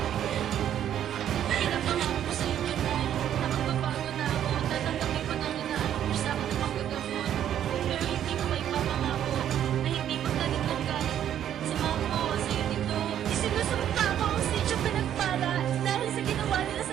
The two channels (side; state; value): left; quieter; 10.4 dB